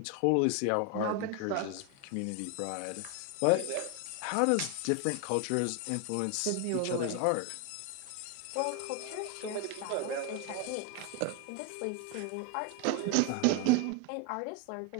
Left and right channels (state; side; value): different; both; correlation 0.01